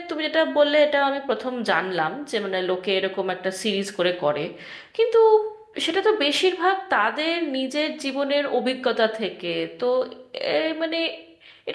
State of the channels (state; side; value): identical; both; correlation 1.00